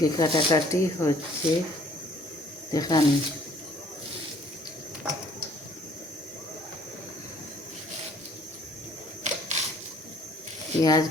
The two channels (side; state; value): both; normal; correlation 0.58